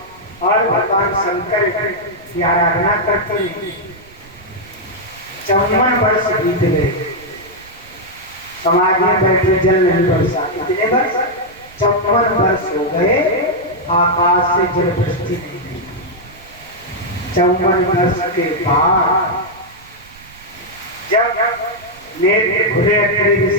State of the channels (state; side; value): noise; right; rumble, 25 dB below the sound